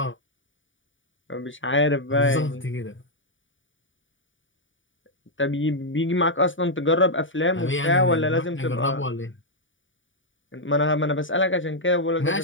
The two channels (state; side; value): late; right; 0.56 ms